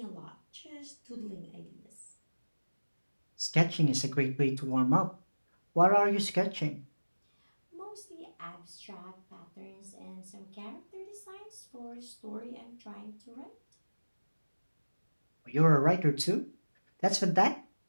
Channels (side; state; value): both; inverted; correlation -1.00